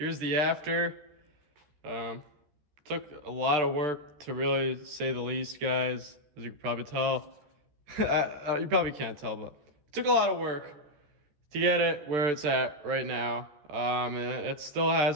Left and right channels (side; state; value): left; late; 13 ms